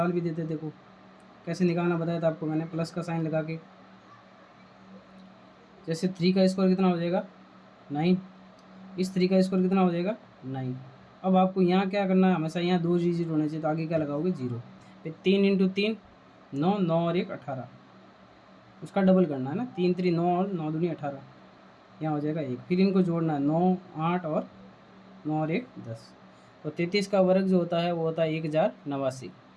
भी देते। देखो कैसे निकालना बताया था आपको मैंने, प्लस का साइन लगा के। जैसे 3 का स्क्वायर कितना हो जाएगा 9, इस 3 का स्क्वायर कितना हो जाएगा 9। अब आपको यहाँ क्या करना है, हमेशा यहाँ 2 डिजिट होने चाहिए, तो आगे क्या लगाओगे 0। फिर 3 इंटू 3 9, 9 और 1 18, उसका डबल करना है ना, 3 3 9 और 9 दूनी 18, यहाँ हो जाएगा 1। फिर इनको जोड़ना है 9 8 और 9 और 1 10। तो 33 का वर्ग जो होता है वो होता है 1089।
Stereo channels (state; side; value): identical; both; correlation 1.00